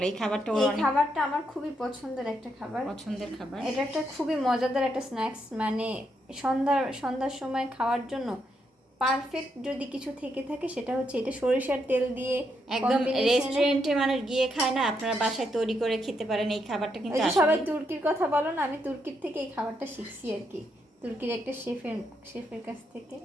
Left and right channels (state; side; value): normal; both; correlation 0.79